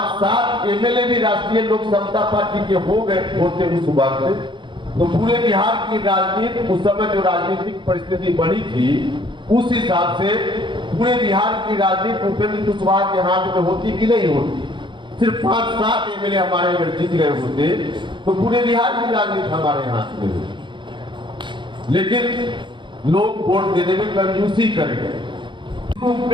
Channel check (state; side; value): late; left; 0.23 ms